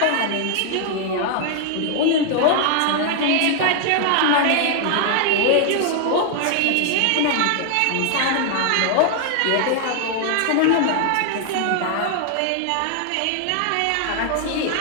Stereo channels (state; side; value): different; both; correlation 0.00